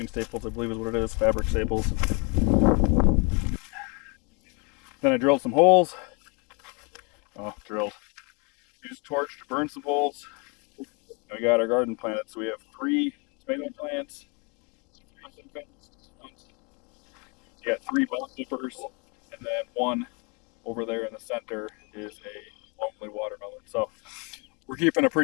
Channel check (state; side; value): quieter; right; 32.9 dB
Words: staples, I believe is what it is, fabric staples. Then I drilled some holes. Used a torch to burn some holes. And we got our garden planted, so we have 3 tomato plants. You got 3 bell peppers, and then 1 over there in the center is a lonely watermelon. So we're keeping a